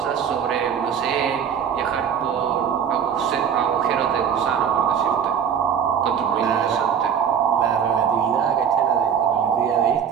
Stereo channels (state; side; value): quieter; left; 7.9 dB